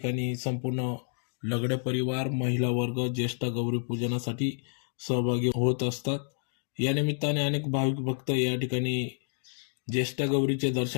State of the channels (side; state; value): right; silent; digital silence